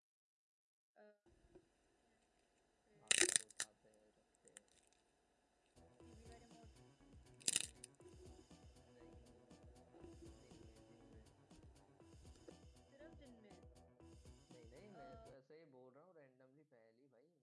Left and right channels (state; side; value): identical; both; correlation 1.00